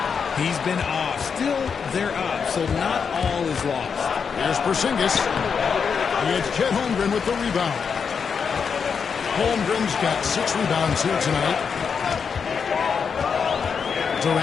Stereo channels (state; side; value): quieter; right; 6.2 dB